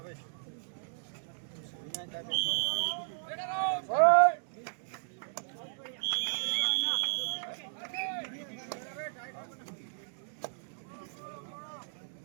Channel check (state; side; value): silent; left; digital silence